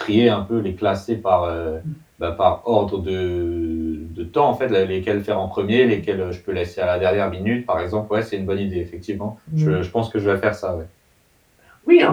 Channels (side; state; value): both; identical; correlation 1.00